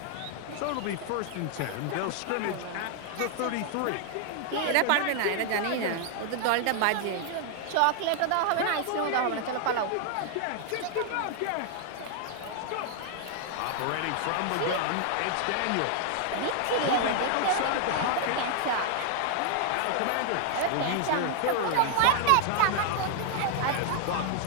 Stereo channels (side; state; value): both; different; correlation 0.00